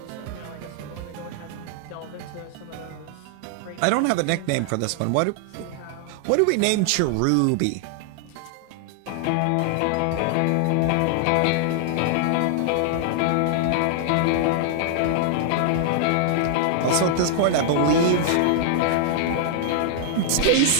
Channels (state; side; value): different; both; correlation 0.00